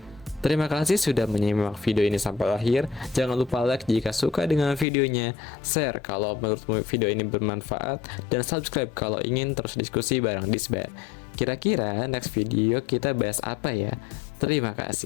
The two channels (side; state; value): right; drops out; at 4.9 s